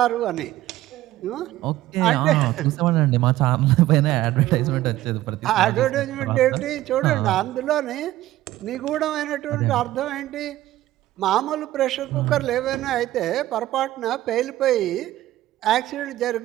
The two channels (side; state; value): left; quieter; 15.1 dB